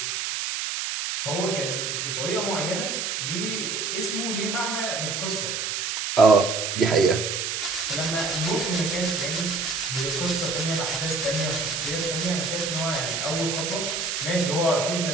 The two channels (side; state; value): right; noise; hiss, 2 dB below the sound